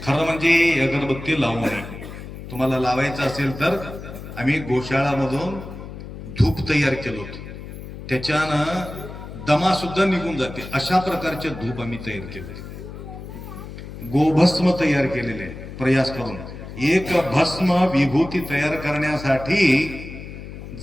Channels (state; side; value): noise; left; hum, 12 dB below the sound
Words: खरं म्हणजे अगरबत्ती लावू नये. तुम्हाला लावायचं असेल तर आम्ही गोशाळामधून धूप तयार केलं होतं. त्याच्यानं दमा सुद्धा निघून जाते. अशा प्रकारचे धूप आम्ही तयार केले. गोभस्म तयार केलेले आहे प्रयास करून. एक भस्म विभूती तयार करण्यासाठी